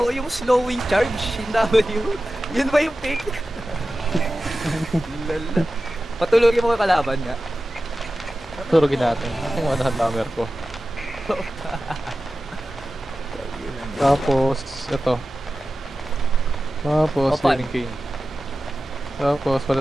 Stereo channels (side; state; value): both; normal; correlation 0.94